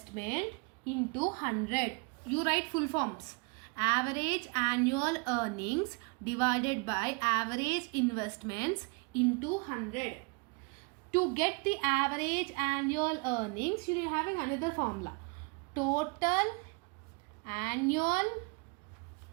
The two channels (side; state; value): left; quieter; 31.5 dB